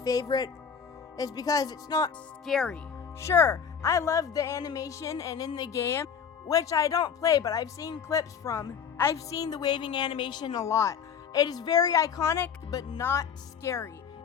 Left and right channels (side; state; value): right; quieter; 7.1 dB